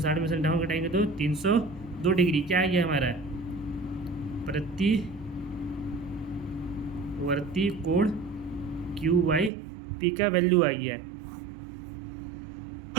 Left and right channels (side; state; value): left; drops out; at 9.5 s